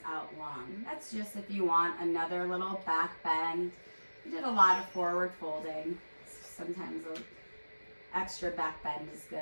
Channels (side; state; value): both; inverted; correlation -1.00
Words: out long. That's just if you want another little back bend. You did a lot of forward folding. Sometimes an extra back bend is